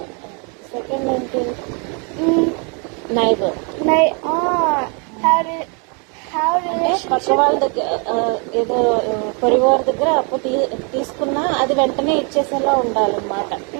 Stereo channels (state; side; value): quieter; left; 35.7 dB